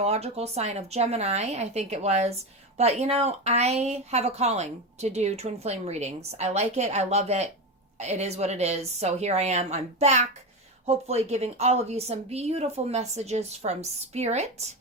sign of Gemini, I think it was. But, I have a calling to do twin flame readings. I like it. I love it. It is what it is. So here I am. I'm back, hopefully giving all of you some beautiful messages from Spirit.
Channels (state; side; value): normal; both; correlation 0.17